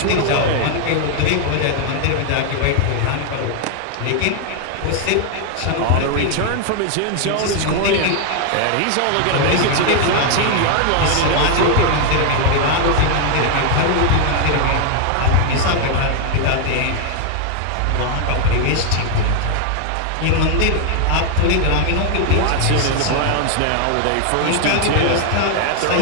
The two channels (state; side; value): different; both; correlation 0.00